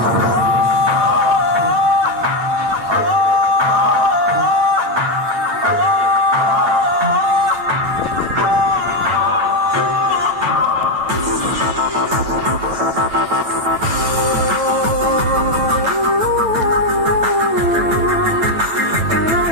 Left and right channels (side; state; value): left; late; 9.1 ms